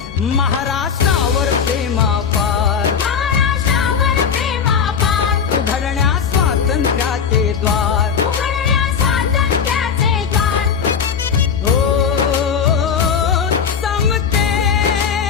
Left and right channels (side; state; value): right; quieter; 6.9 dB